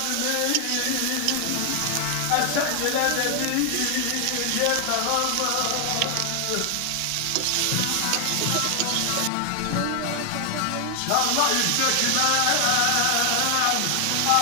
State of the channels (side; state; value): both; different; correlation 0.00